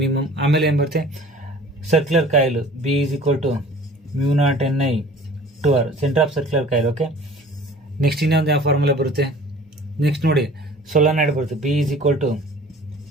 ಆಮೇಲೆ ಏನ್ ಬರುತ್ತೆ? Circular coil B = μ0 centre of circular coil. Okay, next ಇನ್ನೊಂದು ಯಾವ ಫಾರ್ಮುಲಾ ಬರುತ್ತೆ? ನೆಕ್ಸ್ಟ್ ನೋಡಿ, ಸೊಲನಾಯ್ಡ್ ಬರುತ್ತೆ, B =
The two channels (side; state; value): both; normal; correlation 0.47